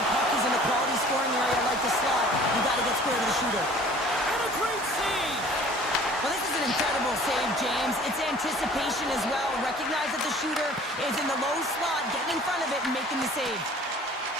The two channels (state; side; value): normal; both; correlation 0.50